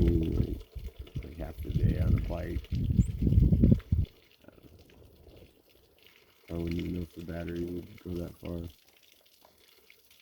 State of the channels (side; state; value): both; identical; correlation 1.00